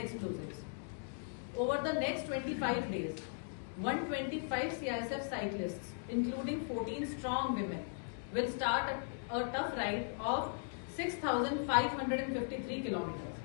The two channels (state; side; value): silent; right; digital silence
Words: Over the next 25 days, 125 CISF cyclists, including 14 strong women, will start a tough ride of 6,553 kilometers.